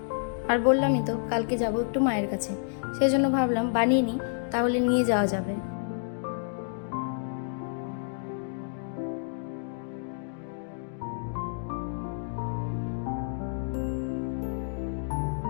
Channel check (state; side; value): silent; right; digital silence